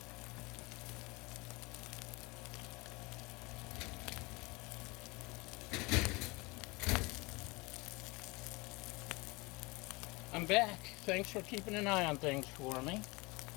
I'm back. Thanks for keeping an eye on things for me.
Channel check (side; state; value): right; quieter; 25.2 dB